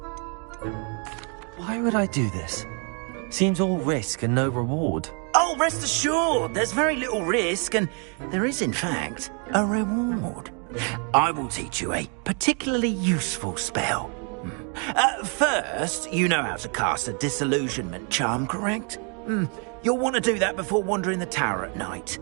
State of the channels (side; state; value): left; quieter; 38.2 dB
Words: Why would I do this? Seems all risk and no reward. Oh, rest assured, there's very little risk, and there is, in fact, a reward. I will teach you a particularly useful spell. First, you know how to cast a disillusionment charm, correct? You'll want to do that before wandering the tower at night.